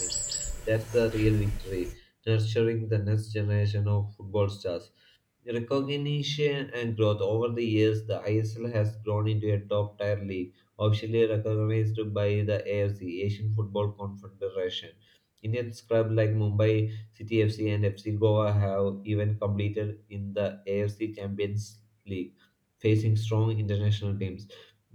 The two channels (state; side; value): identical; both; correlation 1.00